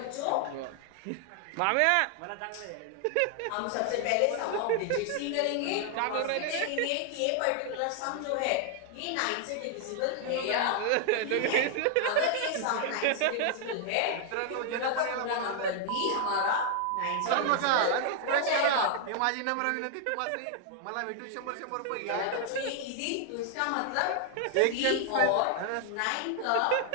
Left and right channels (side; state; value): both; different; correlation 0.00